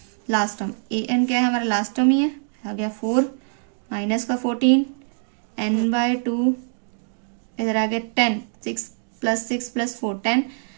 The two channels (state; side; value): silent; left; 63 dB below the other